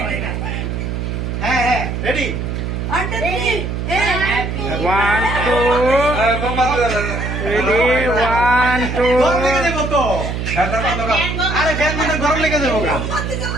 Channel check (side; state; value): right; noise; hum, 3 dB below the sound